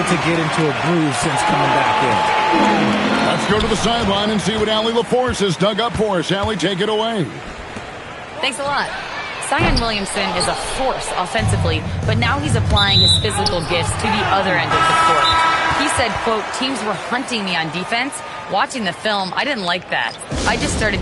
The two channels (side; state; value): both; identical; correlation 1.00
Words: to get into a groove since coming back in. Let's go to the sideline and see what Allie LaForce has dug up for us. Allie, take it away. Thanks a lot. Zion Williamson is a force offensively, but now he's applying his physical gifts to the other end of the court. He said, quote, teams were hunting me on defense. Watching the film, I didn't like that. I just started